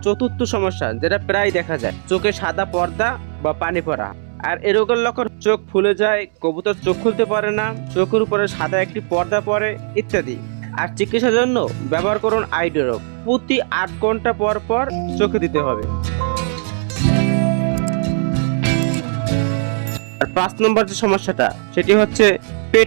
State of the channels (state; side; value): silent; left; 67 dB below the other